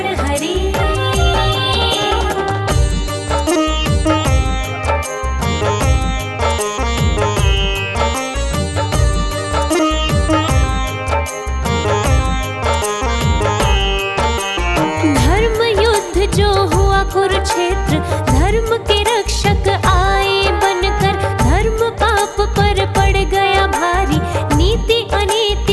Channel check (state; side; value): identical; both; correlation 1.00